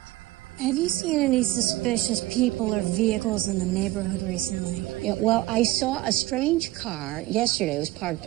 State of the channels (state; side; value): quieter; left; 17.5 dB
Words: Have you seen any suspicious people or vehicles in the neighborhood recently? Yeah, well, I saw a strange car yesterday. It was parked